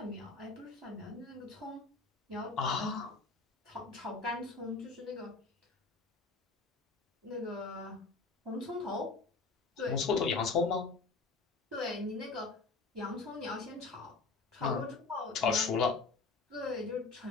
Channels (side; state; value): right; quieter; 4.0 dB